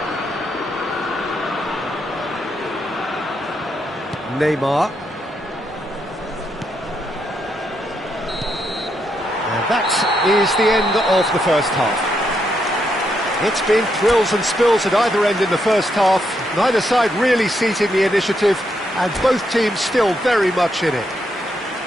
Neymar. And that is the end of the first half. It's been thrills and spills at either end in the first half. Neither side really seizing the initiative, and both teams still very much in it.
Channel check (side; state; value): both; normal; correlation 0.79